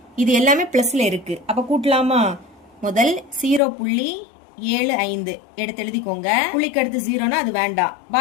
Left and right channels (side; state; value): right; drops out; at 3.6 s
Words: இது எல்லாமே பிளஸ்ல இருக்கு, அப்ப கூட்டலாமா? முதல் 0.75 எடுத்து எழுதிக்கோங்க. புள்ளிக்கு அடுத்து 0னா அது வேண்டாம்.